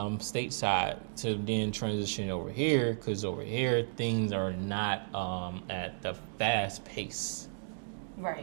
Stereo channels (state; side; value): silent; left; digital silence